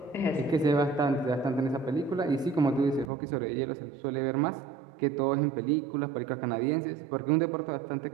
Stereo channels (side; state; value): left; drops out; at 3.1 s